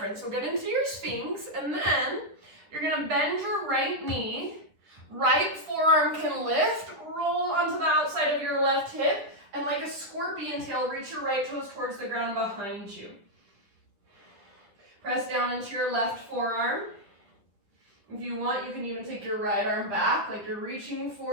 So get into your Sphinx, and then you're gonna bend your right knee. Right forearm can lift, roll onto the outside of your left hip, and like a scorpion tail, reach your right toes towards the ground behind you. Press down into your left forearm. If you want, you can even take your right arm back, like you're reaching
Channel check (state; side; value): late; left; 10 ms